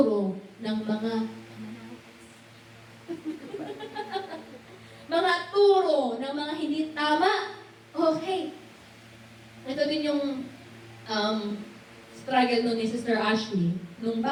ng mga mga turo ng mga hindi tama. Okay. Ito din yung struggle nun ni Sister Ashley. Nung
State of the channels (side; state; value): both; identical; correlation 1.00